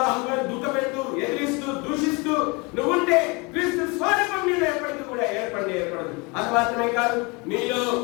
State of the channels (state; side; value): quieter; right; 28.1 dB